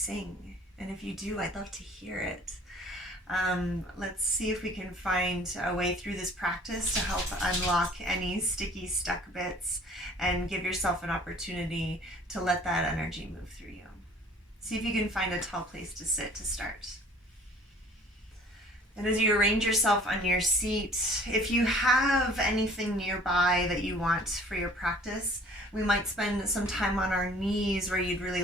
and if you do, I'd love to hear it. Let's see if we can find a way through this practice to help unlock any sticky, stuck bits and give yourself an opportunity to let that energy move through you. See if you can find a tall place to sit to start. And as you arrange yourself on your seat, if you have anything nearby that you want for your practice, we might spend some time on our knees where you'd really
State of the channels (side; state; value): both; normal; correlation 0.52